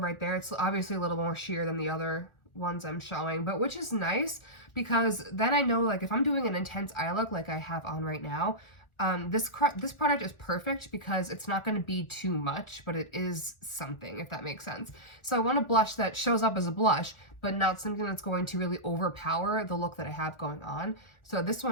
there. It's obviously a little more sheer than the other ones I'm showing, but which is nice because then I know, like, if I'm doing an intense eye look like I have on right now, this product is perfect because it's not going to be too much, but it is something, if that makes sense. So I want a blush that shows up as a blush, but not something that's going to really overpower the look that I have going on. So this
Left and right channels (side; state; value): right; late; 1.5 ms